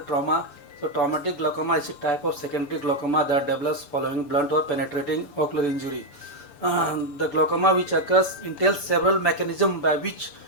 So traumatic glaucoma is a type of secondary glaucoma that develops following blunt or penetrating ocular injury. The glaucoma which occurs entails several mechanisms by which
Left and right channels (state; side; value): late; right; 6.9 ms